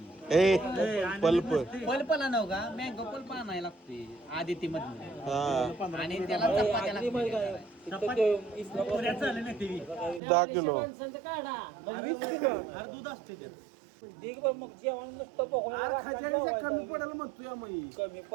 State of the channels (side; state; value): left; drops out; at 10.2 s